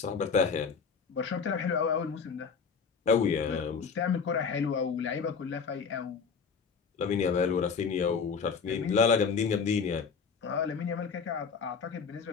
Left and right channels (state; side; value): quieter; right; 5.7 dB